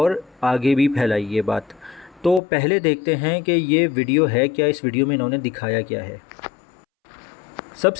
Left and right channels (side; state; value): right; drops out; at 2.4 s